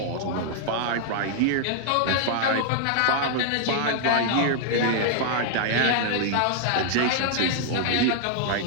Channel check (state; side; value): different; both; correlation 0.00